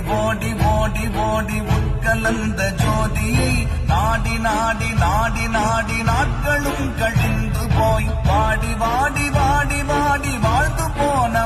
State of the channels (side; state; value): both; identical; correlation 1.00